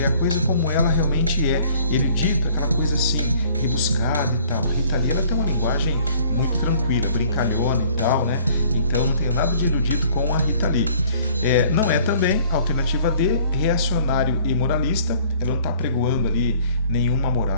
É a coisa como ela realmente é. Erudito, aquela coisa assim, rebuscada e tal. A Rita Lee, ela tem uma linguagem muito tranquila, brincalhona e tal, né? Então, não tem nada de erudito com a Rita Lee. Não é também a alternativa D, reacionário e moralista. Ela não está pregoando ali nenhuma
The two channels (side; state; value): both; inverted; correlation -0.54